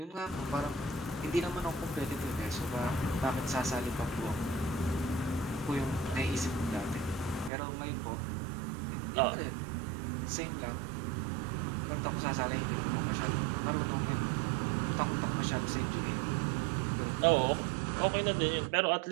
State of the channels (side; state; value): left; drops out; at 7.5 s